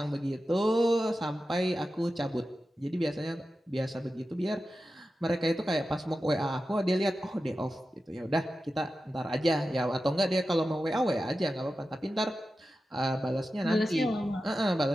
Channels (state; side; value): normal; both; correlation 0.92